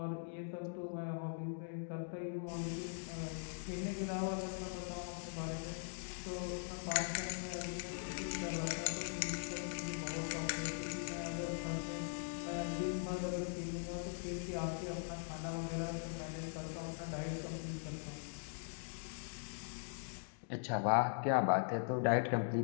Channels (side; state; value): right; silent; digital silence